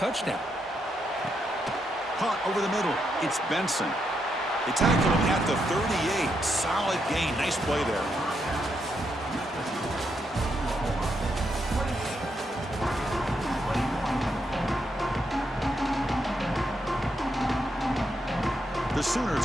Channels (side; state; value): both; normal; correlation 0.80